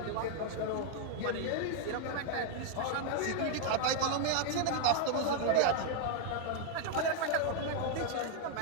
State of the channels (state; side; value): different; both; correlation 0.00